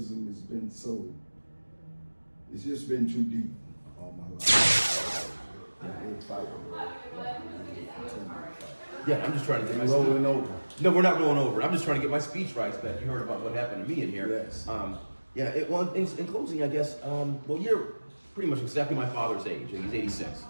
has been it's just been too deep all my life. Yeah, I'm just trying to get my rolling over. No, we're not rolling over. I'm just trying to get my speech rights back. You heard about what happened to me in here. Yes. In closing, I guess, well, you're pretty much exactly my father's age. He's 86.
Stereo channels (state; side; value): inverted; both; correlation -1.00